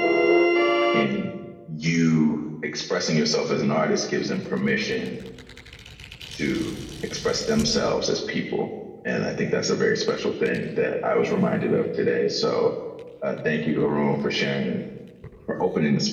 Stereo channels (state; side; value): identical; both; correlation 1.00